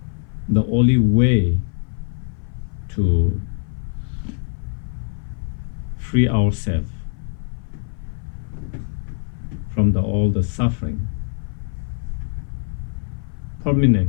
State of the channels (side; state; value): right; silent; 58 dB below the other